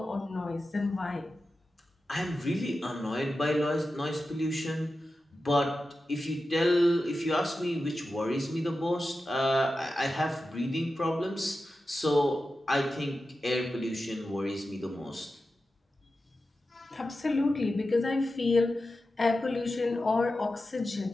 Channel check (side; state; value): both; normal; correlation 0.92